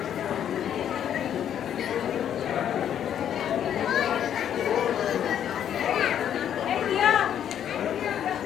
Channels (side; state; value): right; quieter; 9.7 dB